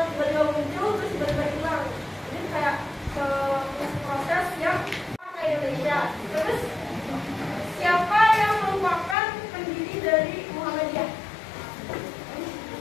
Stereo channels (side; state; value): right; drops out; at 9.2 s